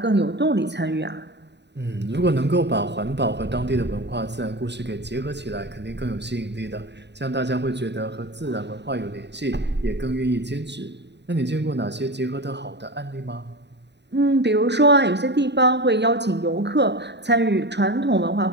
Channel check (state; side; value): late; left; 0.50 ms